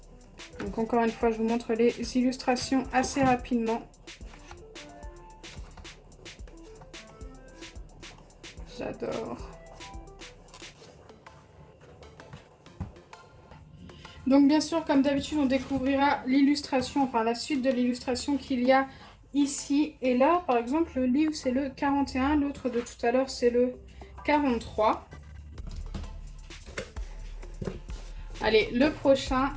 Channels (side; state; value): both; identical; correlation 1.00